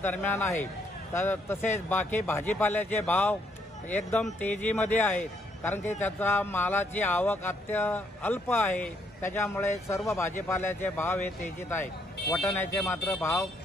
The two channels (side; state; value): both; normal; correlation 0.71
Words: दरम्यान आहे. तसेच बाकी भाजीपाल्याचे भाव एकदम तेजीमध्ये आहेत, कारण की त्याचा मालाची आवक अल्प आहे. त्याच्यामुळे सर्व भाजीपाल्याचे भाव हे तेजीत आहेत. वाटाण्याचे मात्र भाव